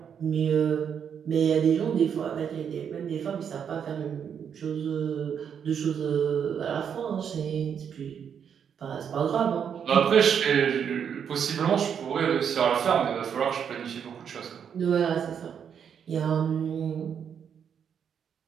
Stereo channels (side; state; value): left; quieter; 7.8 dB